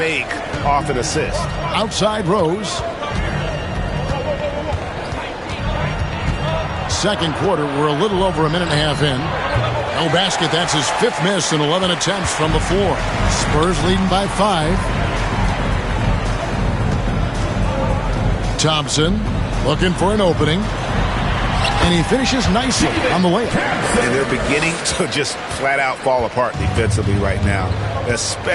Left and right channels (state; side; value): identical; both; correlation 1.00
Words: off an assist. Outside Rose. Second quarter, we're a little over a minute and a half in. No basket, that's his 5th miss in 11 attempts from the floor. Spurs leading by 5. Thompson looking for an opening. And he finishes nicely on the layup. And they're beginning to just flat out fall apart defensively right now,